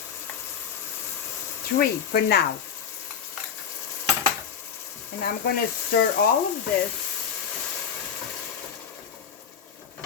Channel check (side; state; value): right; quieter; 7.5 dB